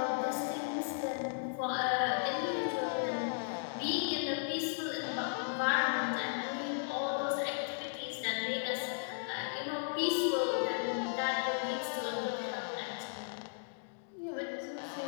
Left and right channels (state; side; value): silent; right; digital silence